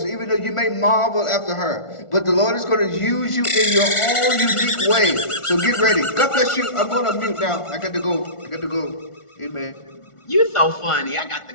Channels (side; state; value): right; late; 1.4 ms